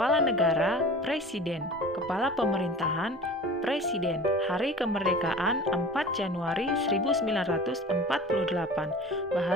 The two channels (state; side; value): normal; both; correlation 0.39